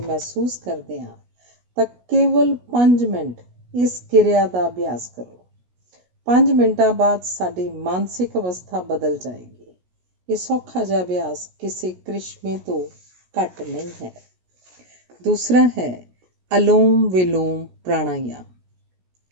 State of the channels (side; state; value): left; late; 16 ms